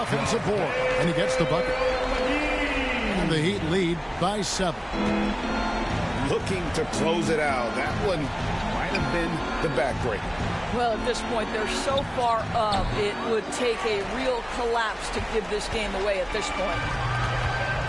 board. And he gets the bucket. And the Heat lead by 7. Looking to close it out. That one might have been the backbreaker. Well, at this point, they're so far up, it would take a real collapse to give this game away at this point.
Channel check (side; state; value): both; identical; correlation 1.00